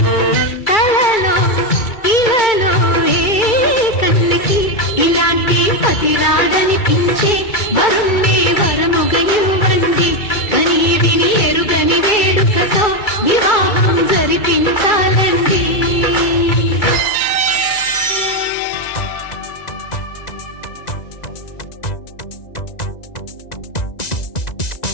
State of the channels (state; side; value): late; right; 2.3 ms